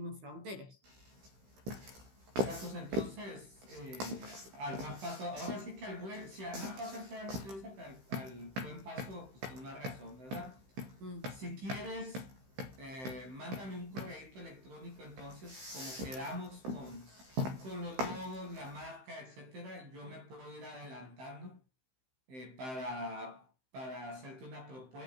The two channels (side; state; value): left; late; 15 ms